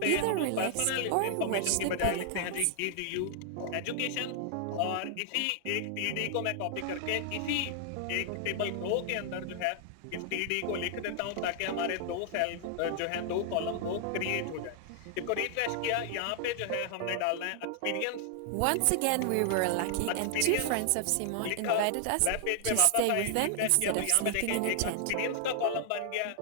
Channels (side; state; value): both; different; correlation 0.00